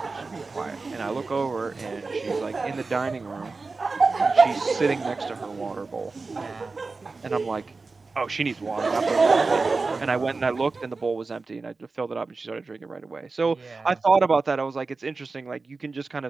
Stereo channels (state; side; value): quieter; left; 4.0 dB